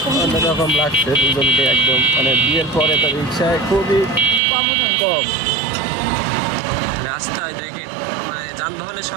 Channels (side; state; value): left; drops out; at 4.4 s